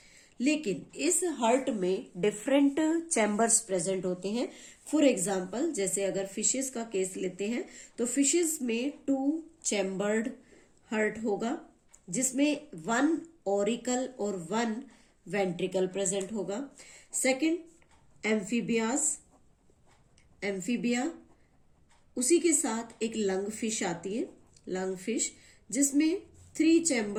लेकिन इस हार्ट में डिफरेंट चैम्बर्स प्रेजेंट होते हैं। फॉर एग्जाम्पल, जैसे अगर फिशेस का केस लेते हैं तो फिशेस में 2 चैम्बर्ड हार्ट होगा, जिसमें 1 ऑरिकल और 1 वेंट्रिकल प्रेजेंट होगा। सेकंड, एम्फीबिया, उसी के साथ एक लंग फिश आती है, लंग फिश, जिसमें 3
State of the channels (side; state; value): both; identical; correlation 1.00